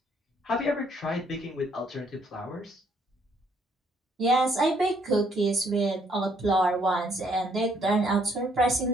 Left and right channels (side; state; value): both; normal; correlation 0.68